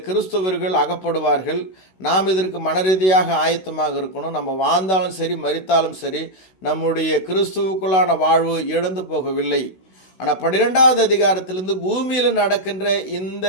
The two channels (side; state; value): right; late; 16 ms